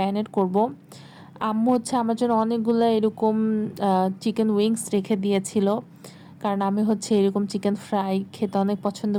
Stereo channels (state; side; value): identical; both; correlation 1.00